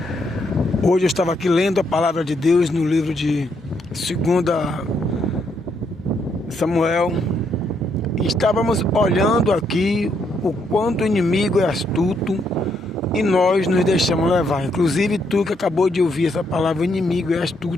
Hoje eu estava aqui lendo a palavra de Deus no livro de 2 Samuel e estávamos olhando aqui o quanto o inimigo é astuto e nós nos deixamos levar. Inclusive tu que acabou de ouvir essa palavra, o inimigo é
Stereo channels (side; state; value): both; normal; correlation 0.75